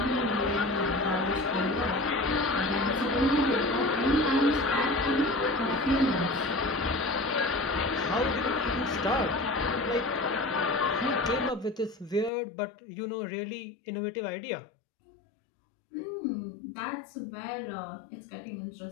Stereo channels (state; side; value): drops out; right; at 12.3 s